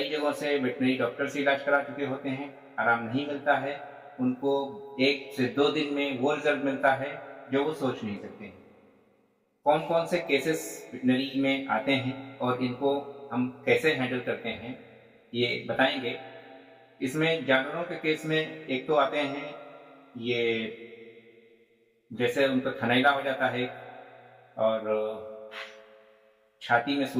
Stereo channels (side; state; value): both; identical; correlation 1.00